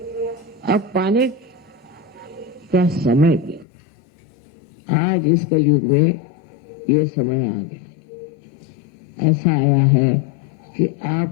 अब पाने का समय गया। आज इस कलयुग में ये समय आ गया, ऐसा आया है कि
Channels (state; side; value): drops out; right; at 3.7 s